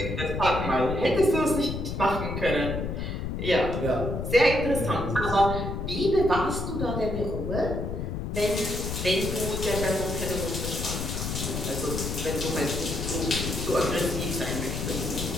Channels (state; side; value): noise; left; rumble, 4 dB below the sound